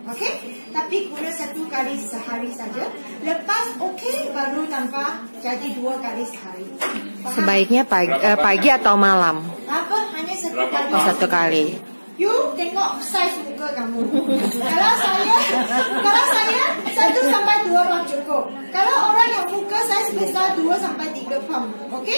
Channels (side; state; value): both; inverted; correlation -1.00